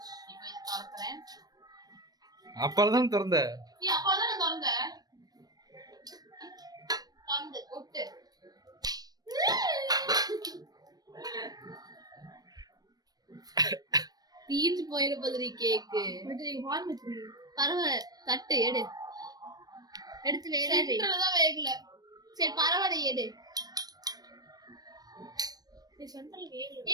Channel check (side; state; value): left; late; 0.19 ms